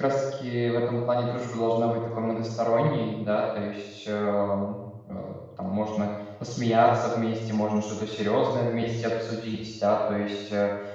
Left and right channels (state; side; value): identical; both; correlation 1.00